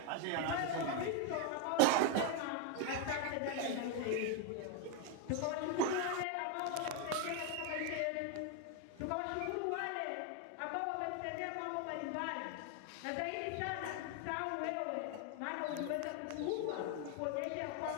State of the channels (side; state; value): both; different; correlation 0.01